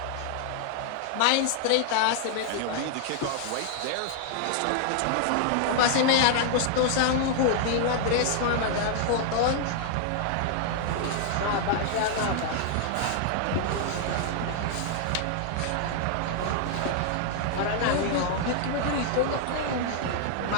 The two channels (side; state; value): both; different; correlation 0.00